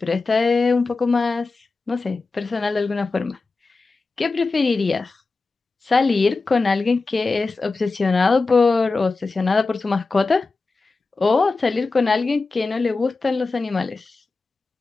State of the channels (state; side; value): quieter; right; 3.9 dB